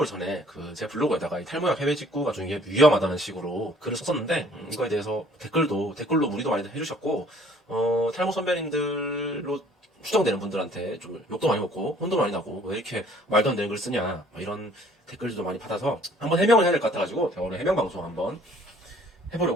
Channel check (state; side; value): normal; both; correlation 0.57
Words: 전에 제 블로그에다가 이 탈모약 해외 직구가 좀 이게 위험하다는 식으로 글을 썼었는데, 이거에 대해서 댓글로 문의도 많이 해주셨고, 탈모 선배님들로 추정되는 분들한테 좀 욕도 많이 먹고, 혼도 많이 나고, 왜 이렇게 말도 안 되는 글 쓰냐, 뭐 이런 댓글들도 많이 받아서 한번 해명을 해야 될 것 같아가지고, 제가 오늘 해명 방송 한번